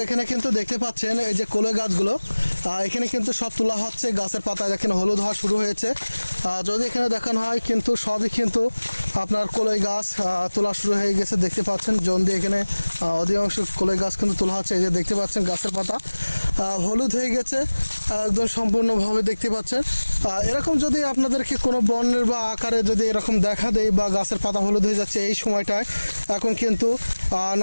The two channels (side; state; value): both; inverted; correlation -1.00